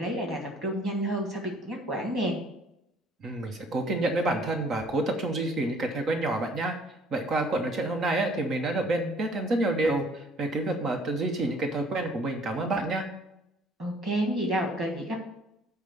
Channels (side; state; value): both; normal; correlation 0.57